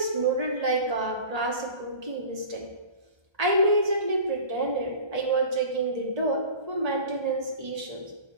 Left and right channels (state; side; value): late; left; 1.3 ms